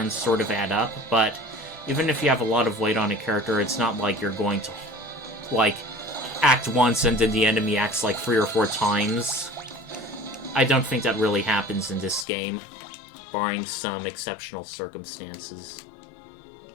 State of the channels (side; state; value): right; drops out; at 12.2 s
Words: sort of add up. But even if you have a lot of weight on a character, it's not like you're going to act once and then the enemy acts 3 or 4 times. I don't think that really happens in this game, barring some exceptional circumstances.